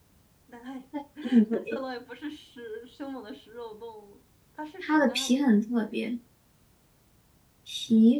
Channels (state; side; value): identical; both; correlation 1.00